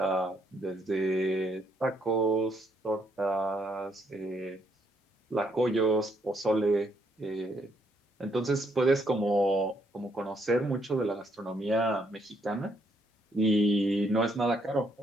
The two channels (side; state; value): both; normal; correlation 0.73